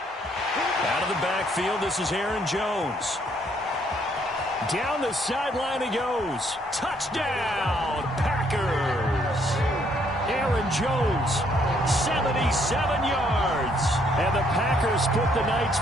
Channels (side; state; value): both; normal; correlation 0.68